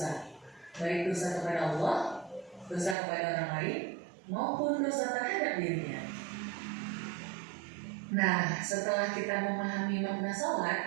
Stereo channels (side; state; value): left; drops out; at 3.0 s